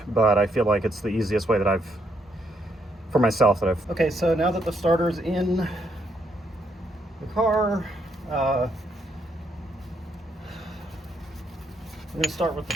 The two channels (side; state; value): both; normal; correlation 0.75